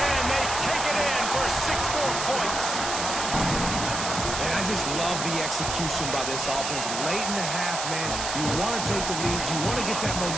they take it in for 6 more points. And I just love the execution by this offense. Late in the half, man, you want to take the lead. You want to get that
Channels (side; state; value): right; noise; hiss, 3 dB below the sound